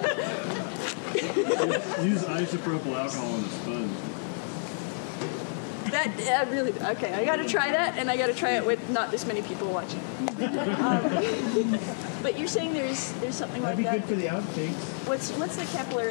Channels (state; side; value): silent; right; digital silence